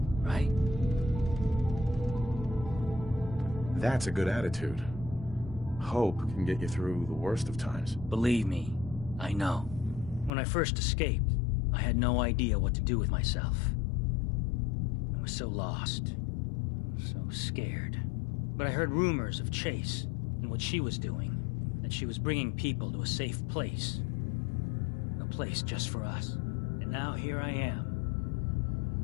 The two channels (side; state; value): right; drops out; at 10.3 s